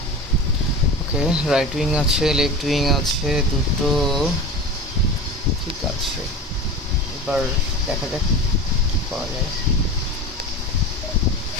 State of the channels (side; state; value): both; normal; correlation 0.31